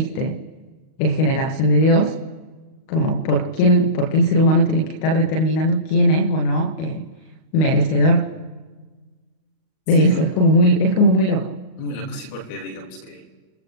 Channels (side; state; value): right; late; 38 ms